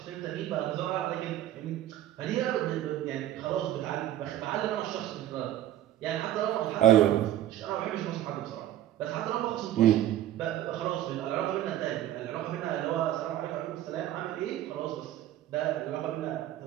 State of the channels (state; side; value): quieter; left; 12.9 dB